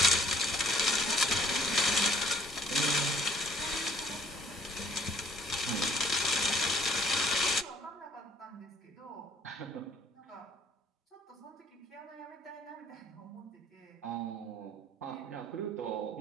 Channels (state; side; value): normal; both; correlation 0.60